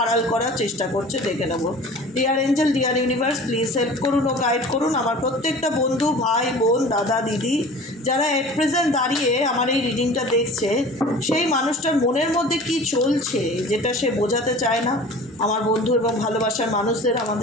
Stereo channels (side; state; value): both; normal; correlation 0.41